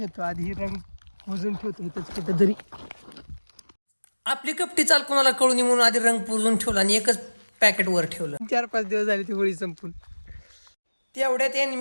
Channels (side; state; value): both; inverted; correlation -1.00